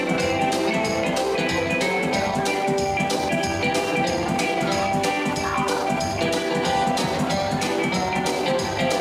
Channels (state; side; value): identical; both; correlation 1.00